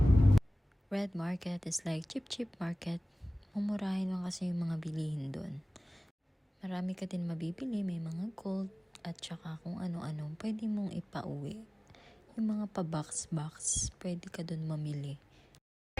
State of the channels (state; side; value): normal; both; correlation 0.98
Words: Red Market is like cheap market. Mumurahin lang kasi yung mga bilihin doon. Marami ka din mabibili, may mga gold at saka kung ano-ano pwede mong ipauwi. Yung mga pa-box, pwede ka doon mamili.